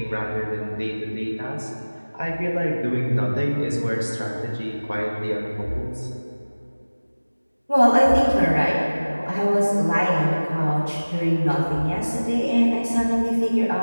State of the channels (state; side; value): inverted; both; correlation -1.00